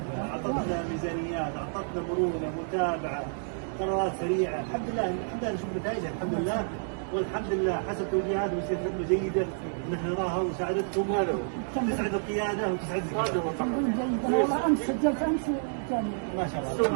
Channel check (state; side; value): silent; left; 58 dB below the other